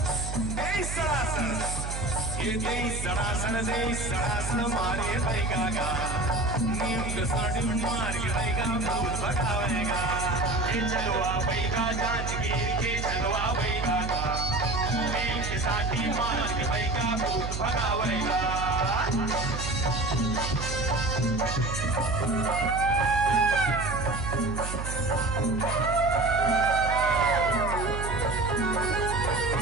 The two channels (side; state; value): right; noise; hum, 5 dB below the sound